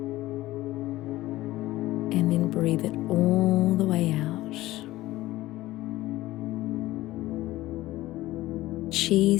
and then breathe it all the way out.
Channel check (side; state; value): right; quieter; 16.9 dB